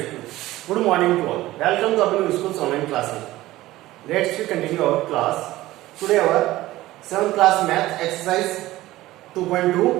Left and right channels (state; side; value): quieter; left; 16.8 dB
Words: good morning to all. Welcome to Abhinav School's online classes. Let's continue our class. Today our 7th class math exercise